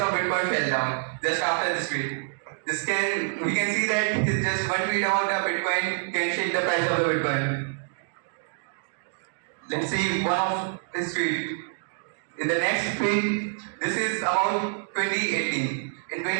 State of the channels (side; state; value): left; silent; digital silence